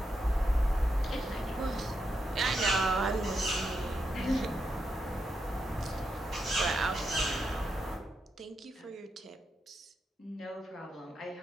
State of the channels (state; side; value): normal; both; correlation 0.84